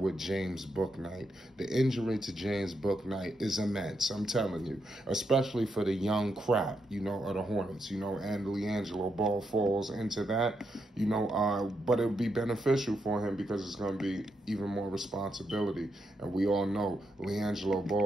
James Bouknight. The injury to James Bouknight is immense, I'm telling you, especially for the young crop, of the Hornets, and Liangelo Ball falls into that, but it would be beneficial for him because it's going to be even more responsibility, and we all know Liangelo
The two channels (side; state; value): both; normal; correlation 0.81